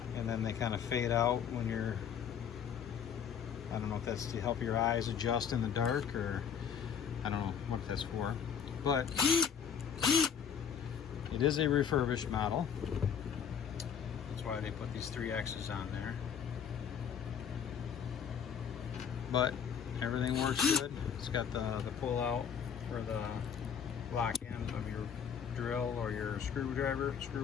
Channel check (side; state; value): right; quieter; 7.6 dB